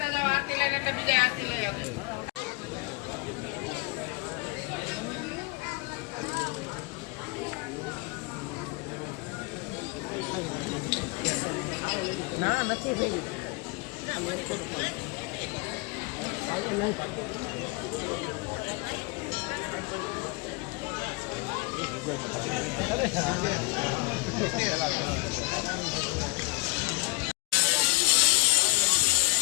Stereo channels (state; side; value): quieter; right; 29.5 dB